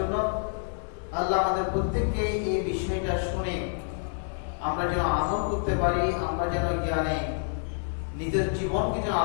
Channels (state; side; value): silent; right; 59 dB below the other